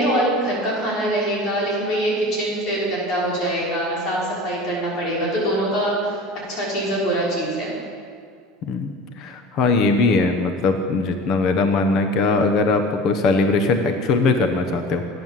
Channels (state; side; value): normal; both; correlation 0.37